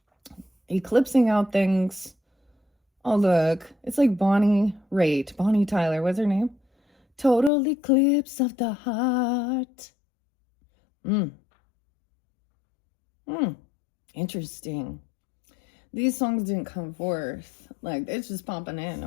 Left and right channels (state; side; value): drops out; right; at 7.5 s